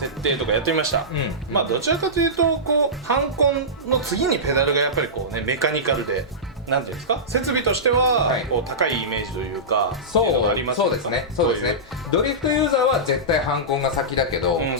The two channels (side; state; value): both; normal; correlation -0.16